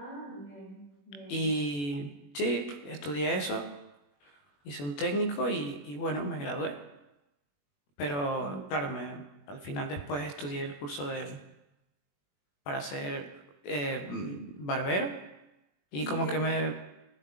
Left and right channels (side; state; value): right; late; 21 ms